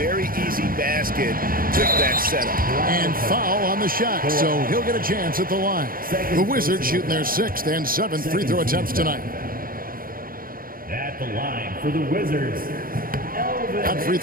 easy basket with that setup. And foul on the shot, so he'll get a chance at the line. The Wizards shooting their 6th and 7th free throw attempts tonight. At the line for the Wizards, Elvin. That free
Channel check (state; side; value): late; left; 0.42 ms